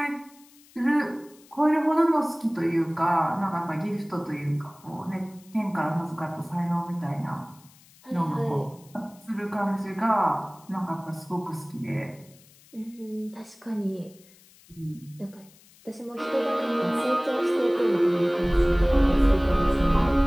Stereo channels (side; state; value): left; noise; hiss, 27 dB below the sound